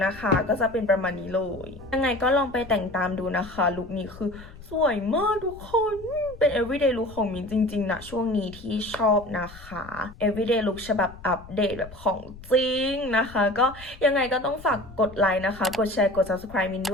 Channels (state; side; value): noise; left; rumble, 18 dB below the sound